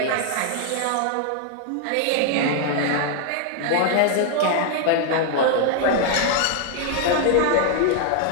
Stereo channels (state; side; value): different; both; correlation 0.00